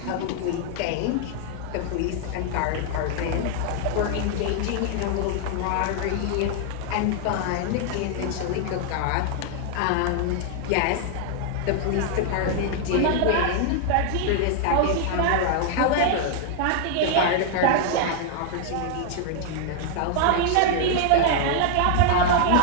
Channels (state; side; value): different; both; correlation 0.00